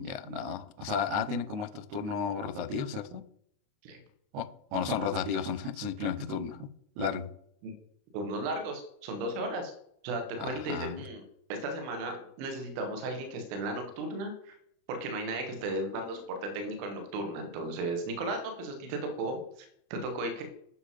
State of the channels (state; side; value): late; left; 29 ms